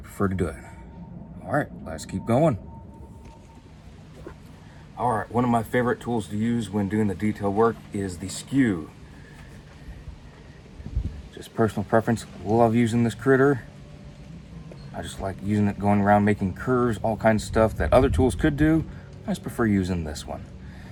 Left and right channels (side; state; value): both; identical; correlation 1.00